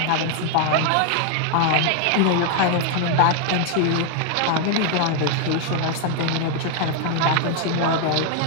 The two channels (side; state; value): both; different; correlation 0.00